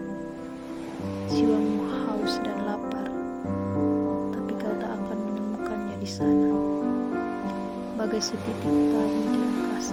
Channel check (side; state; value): both; identical; correlation 1.00